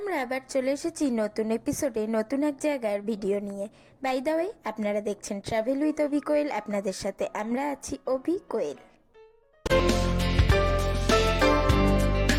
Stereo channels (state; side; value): identical; both; correlation 1.00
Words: আবার চলে এসেছি নতুন এপিসোডে নতুন এক জায়গার ভিডিও নিয়ে। বাই দ্য ওয়ে, আপনারা দেখছেন ট্রাভেল উইথ অভি কোয়েল। আপনাদের সাথে আমরা আছি অভি কোয়েল।